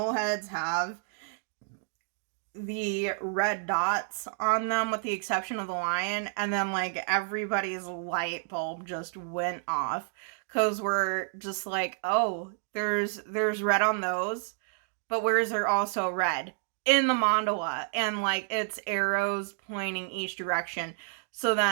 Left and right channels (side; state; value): left; silent; digital silence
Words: heads have the red dots on them with the exception of the lion? And then like everybody's light bulb just went off, because we're just like, oh, there's red on those, but where is there also red? In the mandala, and like it's arrows pointing each direction. So